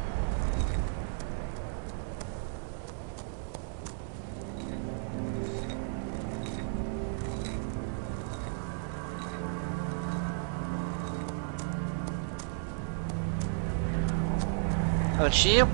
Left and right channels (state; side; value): silent; left; digital silence